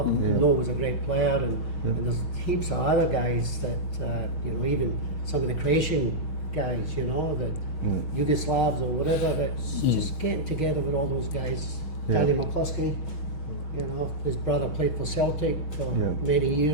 him. Noel was a great player, and there's heaps of other guys that you know, even some of the Croatian guys. You know, the Yugoslavs or whatever. That's just getting together with all those guys. Yeah. Danny McCloskey. You know, his brother played for Celtic for Yeah. many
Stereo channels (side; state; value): right; late; 6.4 ms